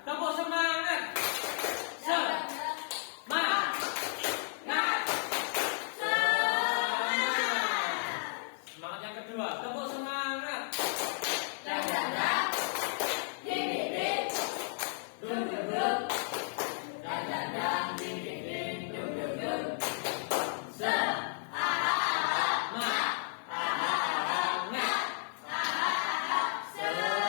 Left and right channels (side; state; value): right; silent; 56 dB below the other